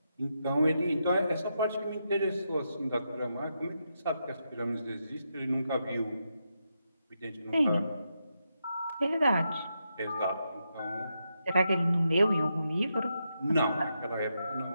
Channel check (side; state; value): both; inverted; correlation -0.84